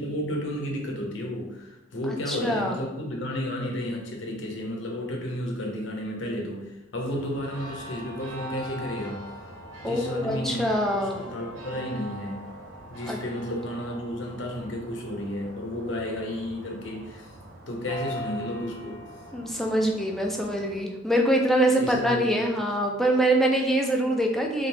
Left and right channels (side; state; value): both; normal; correlation 0.59